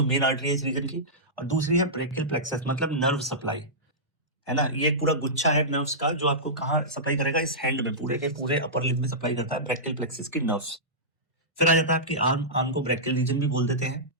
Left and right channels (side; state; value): both; normal; correlation -0.15